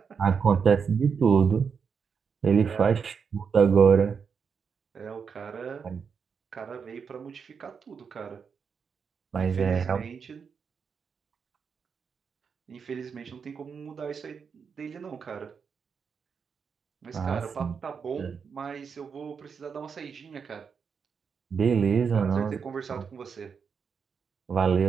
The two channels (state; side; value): quieter; left; 6.2 dB